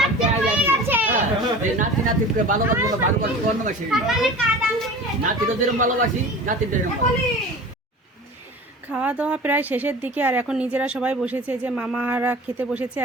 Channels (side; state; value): both; normal; correlation 0.38